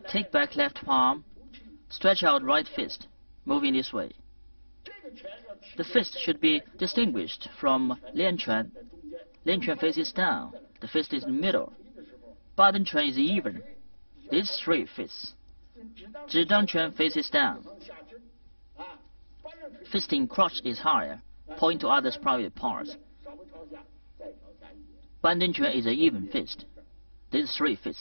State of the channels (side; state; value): both; inverted; correlation -1.00